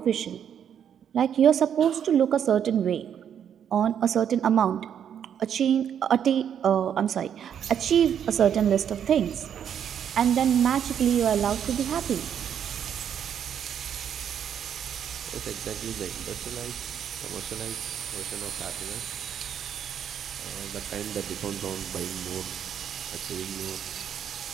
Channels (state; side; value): quieter; left; 8.8 dB